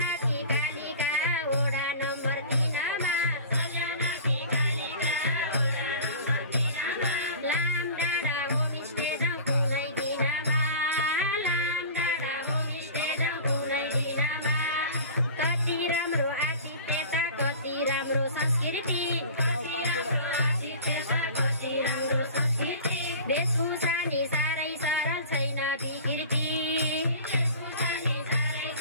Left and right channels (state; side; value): inverted; both; correlation -0.39